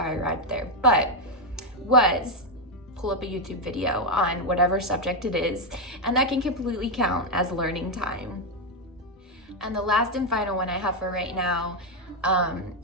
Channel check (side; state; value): both; normal; correlation 0.04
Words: arrived there, but was pull up a YouTube video on whatever subject it is, and that can completely count as learning time. And the last and final one I have for right now